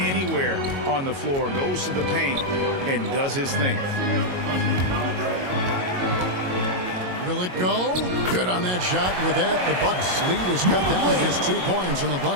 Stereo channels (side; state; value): left; late; 22 ms